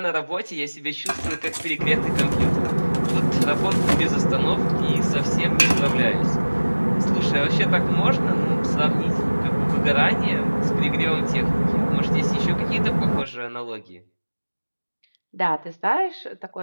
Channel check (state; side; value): inverted; both; correlation -1.00